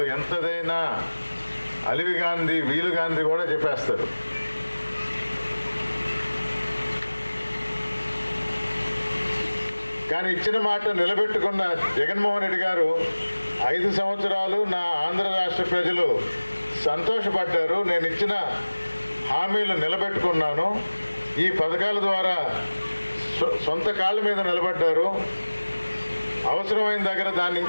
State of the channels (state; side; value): inverted; both; correlation -1.00